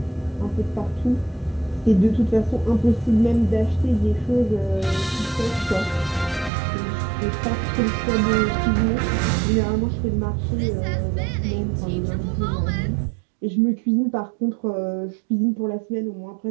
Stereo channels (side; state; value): left; drops out; at 6.5 s